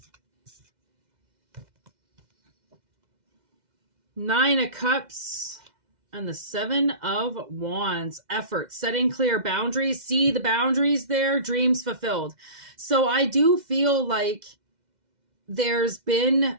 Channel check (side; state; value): left; late; 2.0 ms